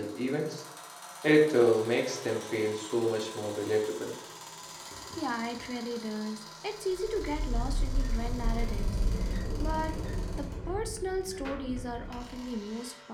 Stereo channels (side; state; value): both; identical; correlation 1.00